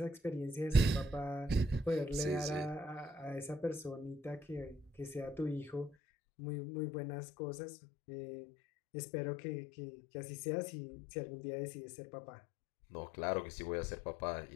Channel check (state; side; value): drops out; right; at 6.0 s